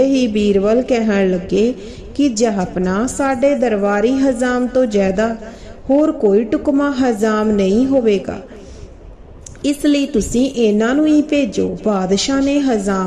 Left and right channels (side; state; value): both; identical; correlation 1.00